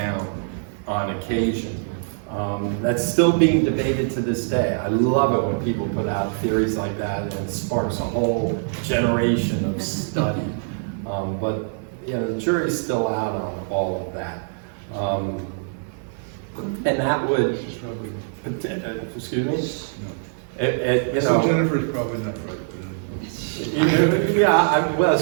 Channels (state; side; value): silent; left; digital silence